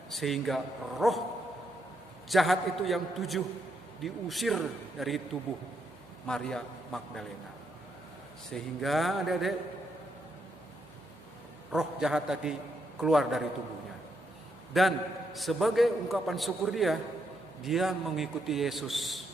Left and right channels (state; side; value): noise; left; hum, 26 dB below the sound